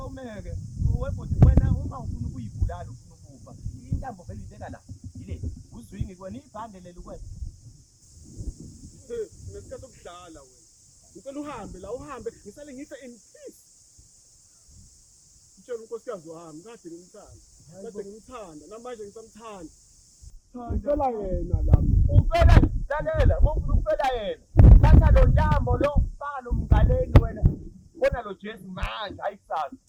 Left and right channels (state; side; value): identical; both; correlation 1.00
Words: Webodi wena uma ufuna ukuyibulala ufuna ukufa. Intambo vele ibeka la. Yile. Uzwingi kwena ibhande leli kwena. Nesikhathi sokudlala wena. Ngicela uhambe ngisale ngife in peace. Utshela unkosikazi wami kade ngimthanda namanje ngisamthanda. Ngicela yena lapha. Ufela lalela, ngofuna ukufela yena. Thatha lo ntambo lo faka lo mgaleni wena. Bona lo Jesu manje ayikusasa.